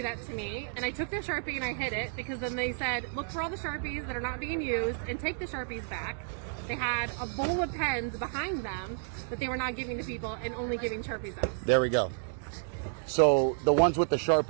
that to me, and I took their Sharpie and I hid it because then they said, look for all the Sharpies that are not being used and take the Sharpies back. They had a bowl of pens behind them that they were not giving to people and only giving Sharpies out. There we go. So the ones with the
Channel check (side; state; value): left; silent; digital silence